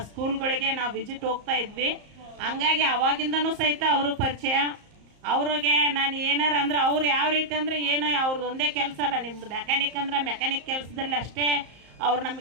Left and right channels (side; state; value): left; late; 34 ms